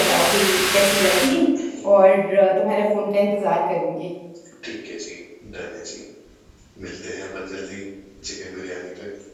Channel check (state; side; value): identical; both; correlation 1.00